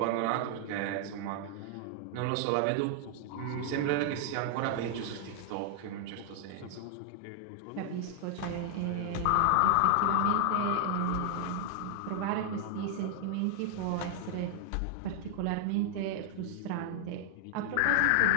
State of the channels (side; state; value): both; different; correlation 0.00